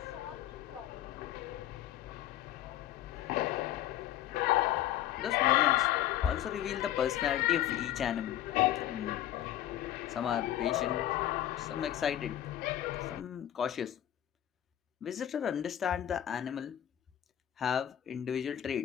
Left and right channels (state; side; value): quieter; right; 12.1 dB